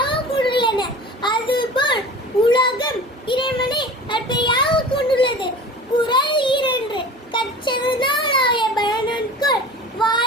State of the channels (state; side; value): normal; both; correlation 0.38